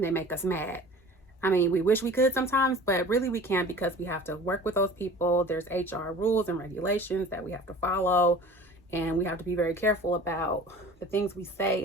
they make us mad. I mean, we wish we could sometimes, but really we can't, because we have to work with those people. There's HR rules and regulations that we have to follow, and we have to be very careful about the things we say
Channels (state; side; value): normal; both; correlation 0.42